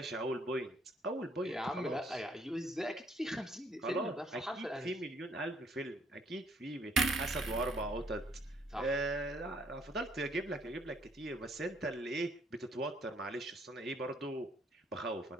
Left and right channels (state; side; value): normal; both; correlation 0.65